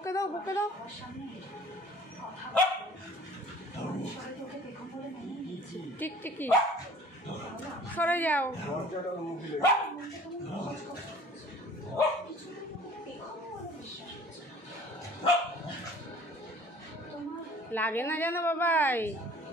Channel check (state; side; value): normal; both; correlation 0.49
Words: দাও বকে দাও। টিকটিকি সরে যাও। লাগে না জানো বাবাই।